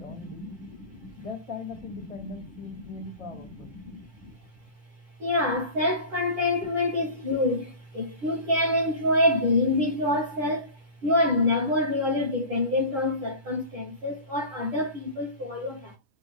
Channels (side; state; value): left; late; 10 ms